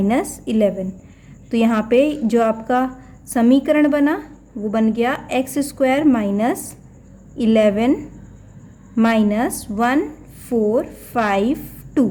11। तो यहाँ पे जो आपका समीकरण बना वो बन गया x² माइनस 11 माइनस 1452।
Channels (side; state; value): both; identical; correlation 1.00